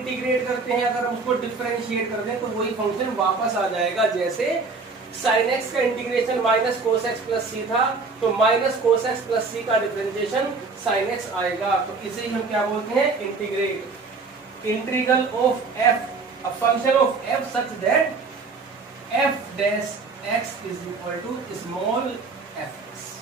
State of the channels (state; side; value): quieter; left; 4.3 dB